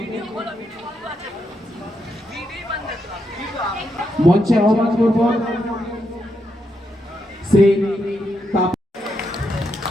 মঞ্চে আহ্বান করব। শ্রী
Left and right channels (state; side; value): normal; both; correlation 0.81